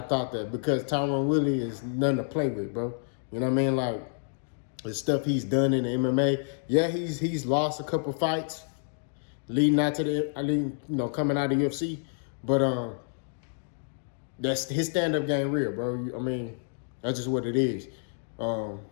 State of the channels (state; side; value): silent; right; digital silence